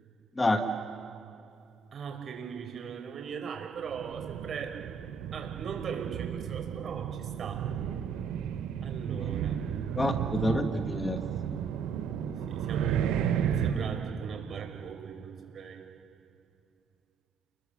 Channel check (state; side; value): quieter; left; 4.6 dB